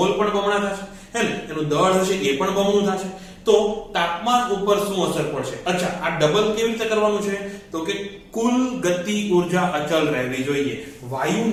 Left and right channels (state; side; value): identical; both; correlation 1.00